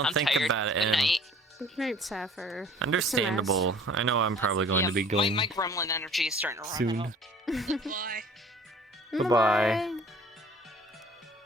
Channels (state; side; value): normal; both; correlation 0.50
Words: it. And Great, Sapphire. understandable. I know I'm probably going to be going My gremlin energy is starting to run soon. out. Goodbye.